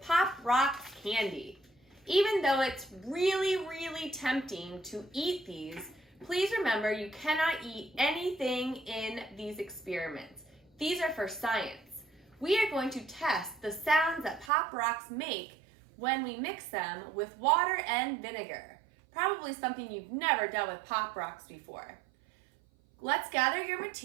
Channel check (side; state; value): left; drops out; at 14.5 s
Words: Rocks candy. Even though it's really tempting to eat these, please remember you cannot eat anything in these experiments. These are for science. We are going to test the sounds that Pop Rocks make when we mix them with water and vinegar. Probably something you've never done with Pop Rocks before. Let's gather your